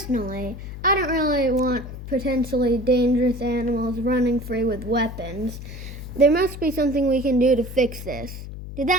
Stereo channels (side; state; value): left; noise; hum, 10 dB below the sound